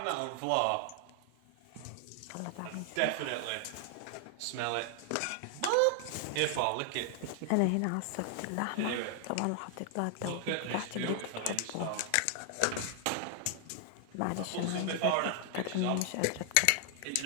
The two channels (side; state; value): both; different; correlation 0.00